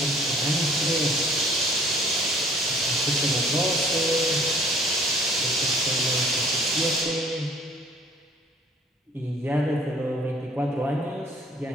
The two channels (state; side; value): normal; both; correlation 0.55